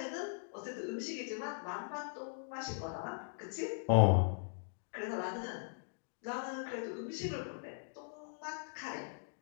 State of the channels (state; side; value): silent; right; digital silence